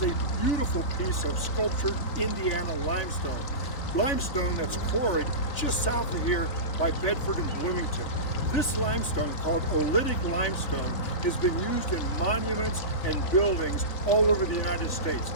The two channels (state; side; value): late; right; 3.4 ms